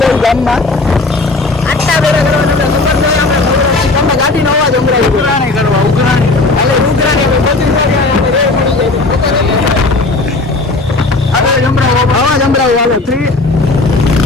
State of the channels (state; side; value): quieter; right; 3.3 dB